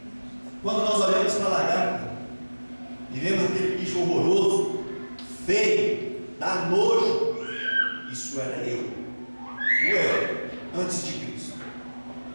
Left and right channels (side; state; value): both; inverted; correlation -1.00